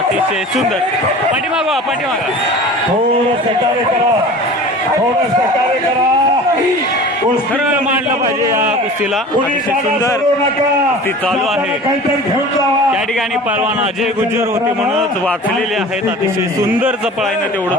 सुंदर. पाठीमागा पाठीमागा थोडं सहकार्य करा, थोडं सहकार्य करा. खरं मांडलं पाहिजे या कुस्तीला. अतिशय सुंदर कुस्ती चालू आहे. त्या ठिकाणी पहलवान अजय गुज्जर होते म्हणूनच वाचलेले आहेत. अतिशय सुंदर चपळाईनं तेवढं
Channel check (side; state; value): both; normal; correlation 0.40